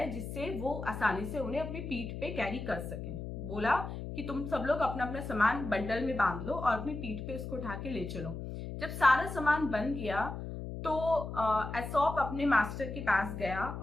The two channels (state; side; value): noise; left; hum, 7 dB below the sound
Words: जिससे वो आसानी से उन्हें अपनी पीठ पे कैरी कर सकें। बोला कि तुम सब लोग अपना अपना सामान बंडल में बांध लो और अपनी पीठ पे उसको उठा के ले चलो। जब सारा सामान बन गया तो एसॉप अपने मास्टर के पास गया